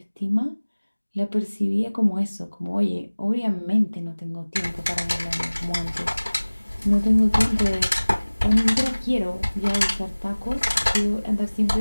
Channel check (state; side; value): inverted; both; correlation -1.00